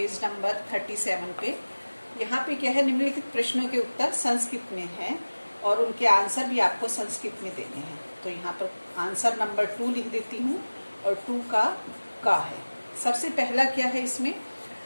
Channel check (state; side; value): inverted; both; correlation -1.00